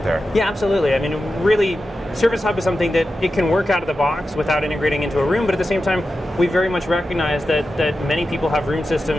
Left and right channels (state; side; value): normal; both; correlation 0.91